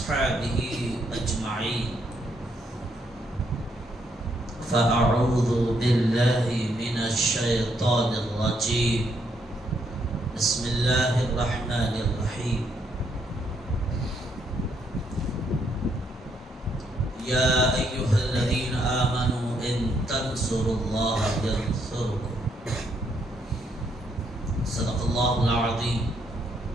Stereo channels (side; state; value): both; normal; correlation 0.74